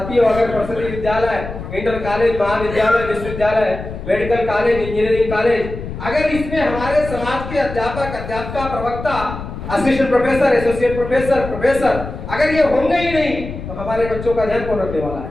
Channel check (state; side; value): noise; left; rumble, 9 dB below the sound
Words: अगर प्रसिद्ध विद्यालय, इंटर कॉलेज, महाविद्यालय, विश्वविद्यालय, मेडिकल कॉलेज, इंजीनियरिंग कॉलेज, अगर इसमें हमारे समाज के अध्यापक, अध्यापिका, प्रवक्ता, असिस्टेंट प्रोफेसर, एसोसिएट प्रोफेसर अगर ये होंगे ही नहीं तो हमारे बच्चों का ध्यान कौन रखने वाला